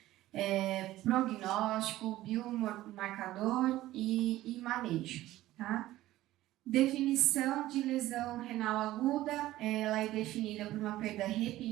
prognóstico, biomarcador e manejo, tá? Definição de lesão renal aguda, ela é definida por uma perda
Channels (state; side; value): quieter; left; 15.6 dB